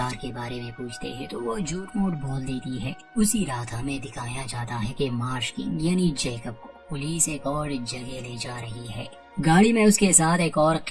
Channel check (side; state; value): both; identical; correlation 1.00